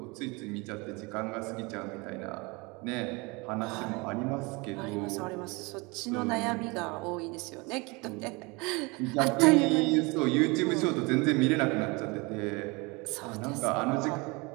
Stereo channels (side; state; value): left; quieter; 26.8 dB